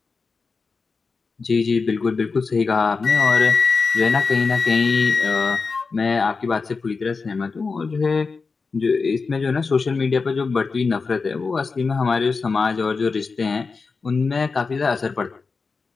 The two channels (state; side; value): quieter; right; 4.6 dB